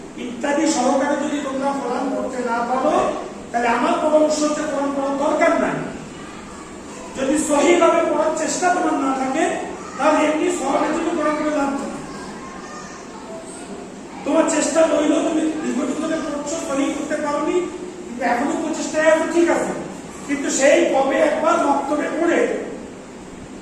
ইত্যাদি সহকারে যদি তোমরা কোরআন পড়তে না পারো তাহলে আমার পরামর্শ হচ্ছে কোরআন পড়ার দরকার নাই। যদি সহিভাবে পড়ার চেষ্টা তোমার না থাকে তাহলে এমনি সহজে তুমি কোরআন পড়ে লাভ নেই। তোমার চেষ্টা রইল, তুমি দীর্ঘদিন ধরে পড়ছো, সহি করতে পারোনি, কিন্তু এখনো প্রচেষ্টায় আছে, ঠিক আছে, কিন্তু সেই কবে একবার মক্তবে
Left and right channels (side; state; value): both; identical; correlation 1.00